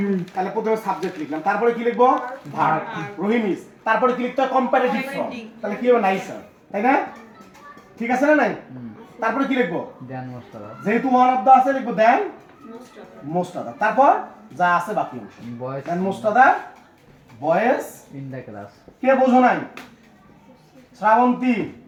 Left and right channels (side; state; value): both; identical; correlation 1.00